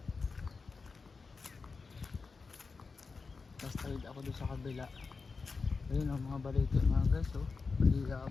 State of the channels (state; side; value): quieter; right; 4.5 dB